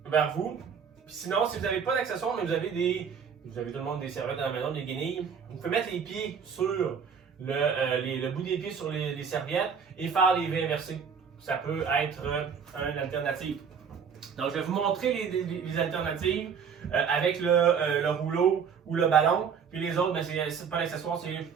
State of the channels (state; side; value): quieter; left; 6.7 dB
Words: vers vous. Puis sinon, si vous n'avez pas d'accessoire, mais vous avez tout le monde des serviettes à la maison, des guenilles, vous pouvez mettre les pieds sur le bout des pieds sur les serviettes et faire les V inversés. Ça peut être une alternative. Donc, je vais vous montrer les alternatives avec le rouleau ou le ballon. Puis les autres, ben, c'est pas l'accessoire, c'est